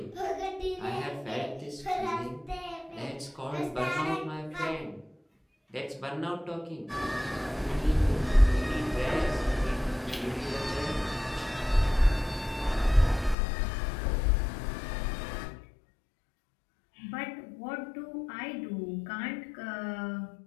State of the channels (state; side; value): drops out; right; at 13.4 s